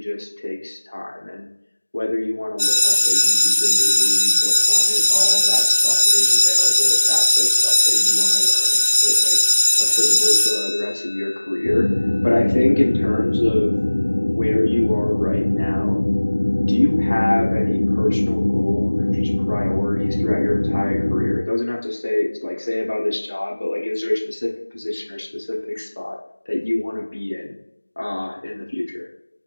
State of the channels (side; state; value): both; inverted; correlation -1.00